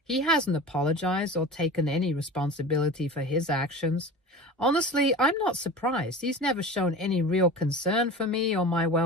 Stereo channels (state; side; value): normal; both; correlation 0.34